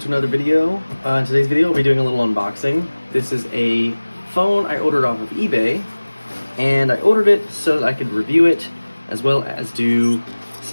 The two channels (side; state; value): both; inverted; correlation -1.00